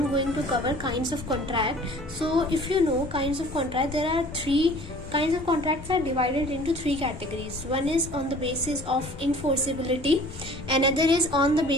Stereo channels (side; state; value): left; noise; rumble, 14 dB below the sound